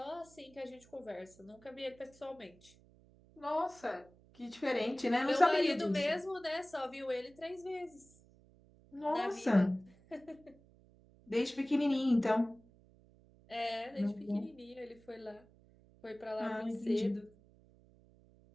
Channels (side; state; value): right; noise; hum, 26 dB below the sound